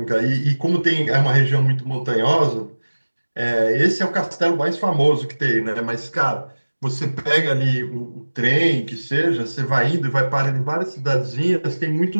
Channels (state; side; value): inverted; both; correlation -1.00